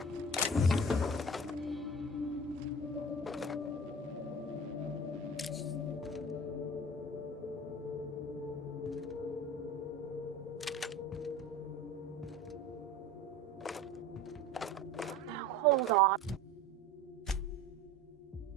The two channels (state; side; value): normal; both; correlation 0.37